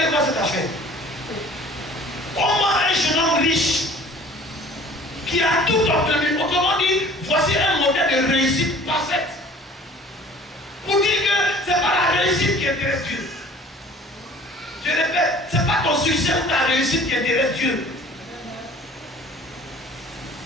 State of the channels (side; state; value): both; normal; correlation 0.49